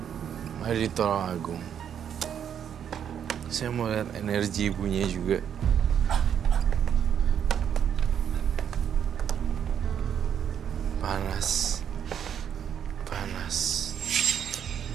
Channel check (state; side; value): quieter; left; 8.7 dB